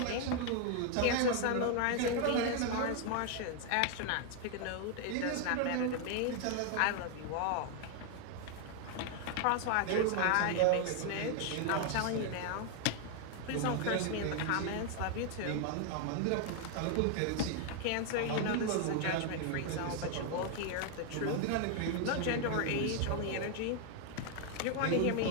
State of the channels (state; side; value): different; both; correlation 0.00